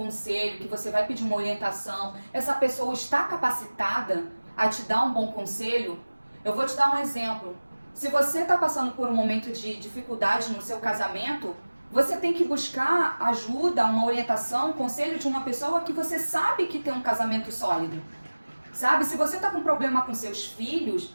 que você vai pedir uma orientação, essa pessoa está capacitada a te dar um bom conselho? Eu vou te dar um exemplo. Se você está passando por um momento de dificuldade no seu casamento, você tem que buscar ajuda, uma orientação, um conselho de uma pessoa que você sabe que tem um casamento sólido. Sabe? Se você está com problema com seus filhos,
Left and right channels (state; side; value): inverted; both; correlation -1.00